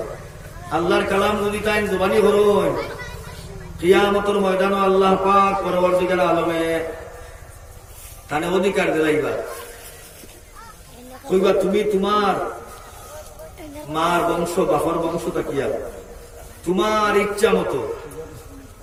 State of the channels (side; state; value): both; identical; correlation 1.00